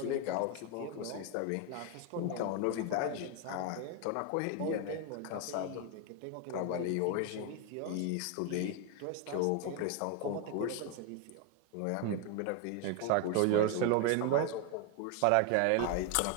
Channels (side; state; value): both; different; correlation 0.01